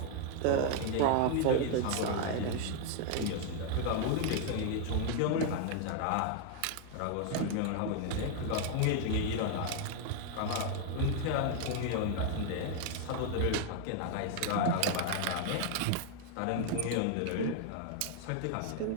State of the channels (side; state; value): both; different; correlation 0.00